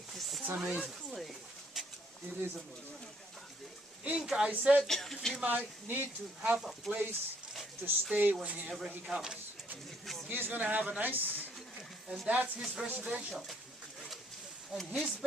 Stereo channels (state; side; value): normal; both; correlation 0.68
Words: amazing. It is amazing. Inca, I said, he might need to have a place to stay whenever he comes. He's going to have a nice, and that's his residential. And his